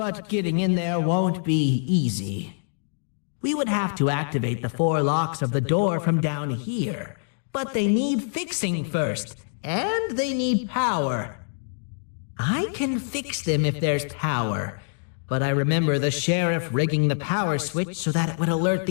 getting in there won't be easy. We would have to activate the 4 locks of the door from down here, but they need fixing first, and they need power. I can fix them if there's power, but I remember the sheriff rigging the power switch so that it would alert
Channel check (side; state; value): right; silent; digital silence